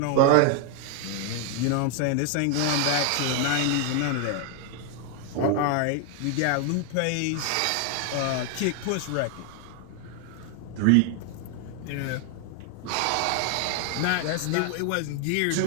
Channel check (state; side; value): different; both; correlation 0.00